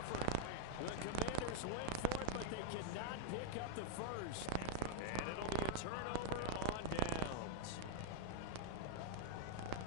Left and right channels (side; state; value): both; different; correlation 0.00